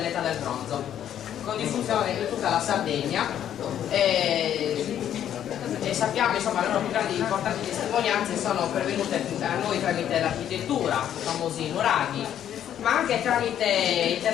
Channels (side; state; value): right; quieter; 10.3 dB